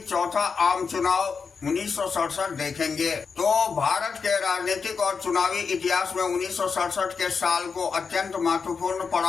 चौथा आम चुनाव 1967 देखेंगे। तो भारत के राजनीतिक और चुनावी इतिहास में 1967 के साल को अत्यंत महत्वपूर्ण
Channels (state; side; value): quieter; right; 5.4 dB